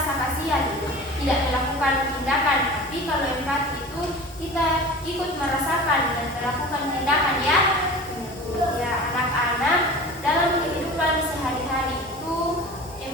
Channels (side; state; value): both; normal; correlation 0.37